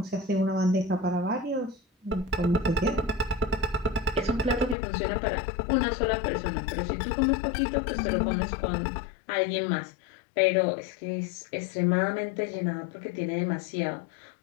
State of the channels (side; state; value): right; drops out; at 4.8 s